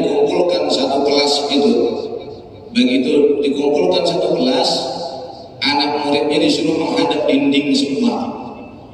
satu kelas itu. Begitu dikumpulkan satu kelas, anak muridnya disuruh menghadap dinding semua.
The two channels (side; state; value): both; identical; correlation 1.00